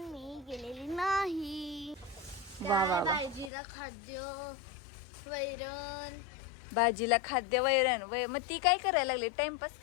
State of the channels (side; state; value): right; drops out; at 3.5 s